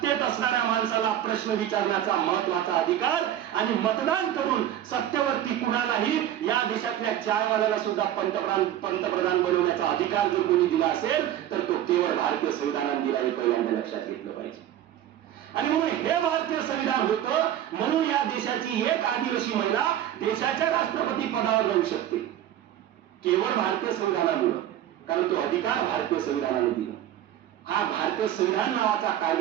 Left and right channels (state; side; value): quieter; left; 11.6 dB